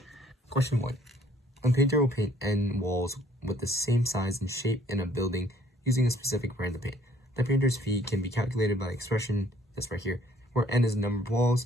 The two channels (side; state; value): both; normal; correlation 0.59